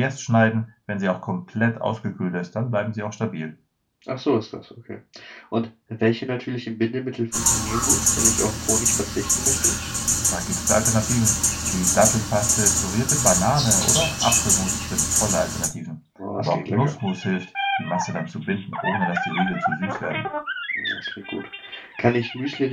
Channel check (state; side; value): identical; both; correlation 1.00